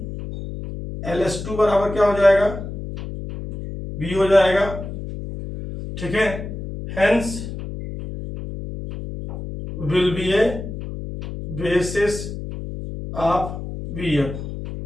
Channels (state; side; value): noise; left; hum, 8 dB below the sound